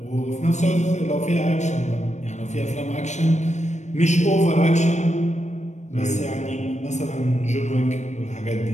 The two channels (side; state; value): right; late; 0.34 ms